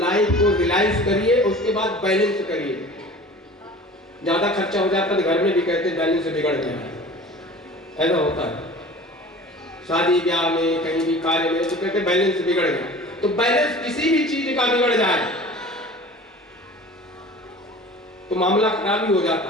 को रियलाइज करिए, उसके बाद बैलेंस करिए। ज्यादा खर्चा हो जाता है तो घर में भी कहते हैं बैलेंस बिगड़ गया, ऐसा होता है। शादी ब्याह में, कहीं भी कार्य में, तो कहते हैं बैलेंस बिगड़ गया। तो बैलेंस किसी भी चीज का बिगड़ जाए तो मामला खराब ही हो जाता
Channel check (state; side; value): normal; both; correlation 0.42